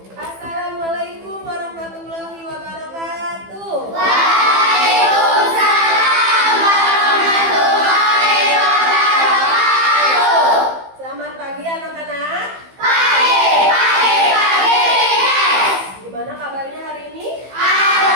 warahmatullahi wabarakatuh. Selamat pagi anak-anak. Gimana kabarnya hari ini?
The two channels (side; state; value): left; late; 15 ms